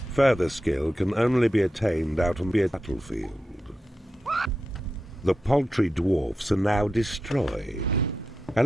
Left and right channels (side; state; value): both; normal; correlation 0.89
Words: Further skill can only be attained out on the battlefield. The paltry dwarfs are now destroyed.